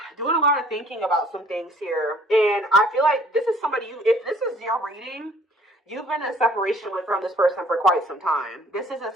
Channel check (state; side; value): normal; both; correlation 0.56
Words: doing a lot of thinking about some things here. And I feel like this is somebody, if this is your reading, you've been in separation from this person for quite some time. This isn't